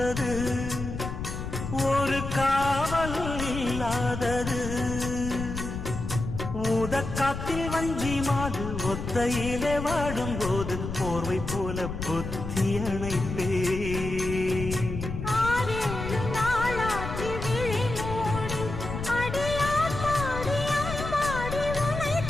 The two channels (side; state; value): left; noise; rumble, 6 dB below the sound